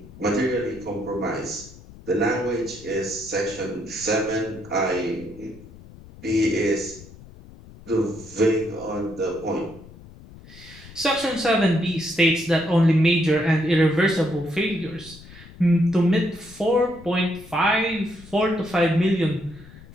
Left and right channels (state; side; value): noise; left; rumble, 19 dB below the sound